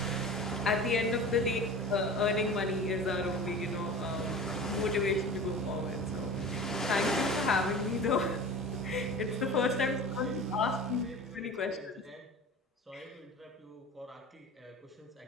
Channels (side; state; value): both; normal; correlation 0.37